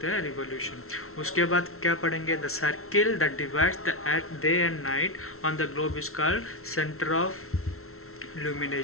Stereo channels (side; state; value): right; late; 0.63 ms